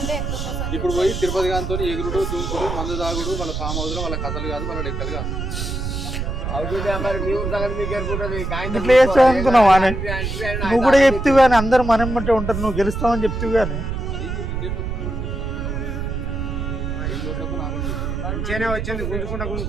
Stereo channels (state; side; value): noise; right; rumble, 4 dB below the sound